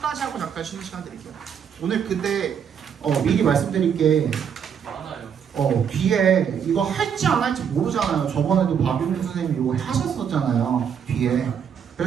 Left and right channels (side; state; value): left; quieter; 7.7 dB